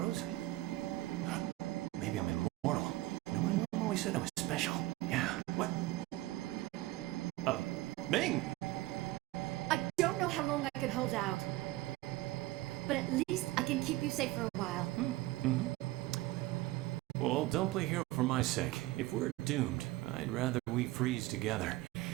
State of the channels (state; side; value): quieter; left; 18.4 dB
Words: Maybe I'm immortal. No, my mom always said I was special. Yeah, what? Oh, Ming! I don't know how long I can hold out. But at least I can keep you safe for a while. Well, don't play hero for my sake. If we're doomed, I'd rather we freeze together.